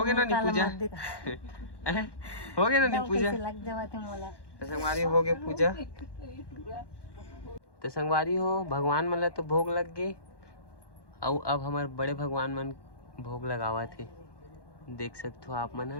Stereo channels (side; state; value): right; late; 1.1 ms